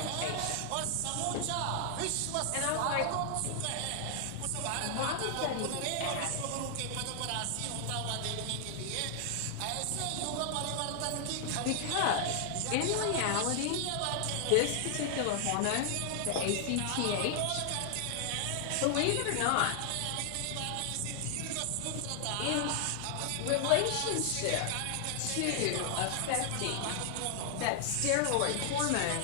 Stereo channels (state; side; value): different; both; correlation 0.00